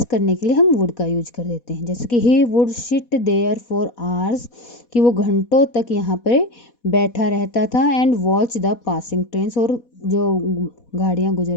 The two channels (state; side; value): late; right; 4.1 ms